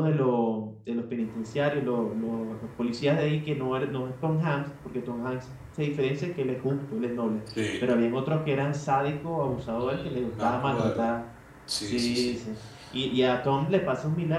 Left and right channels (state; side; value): identical; both; correlation 1.00